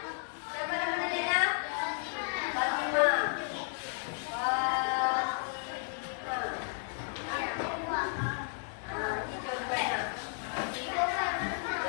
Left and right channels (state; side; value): silent; right; 56 dB below the other